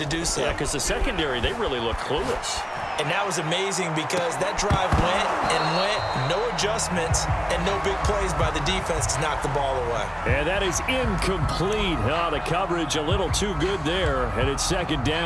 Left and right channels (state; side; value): identical; both; correlation 1.00